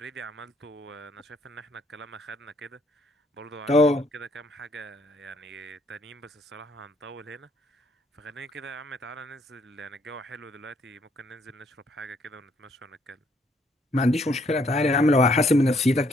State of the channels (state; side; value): normal; both; correlation 0.67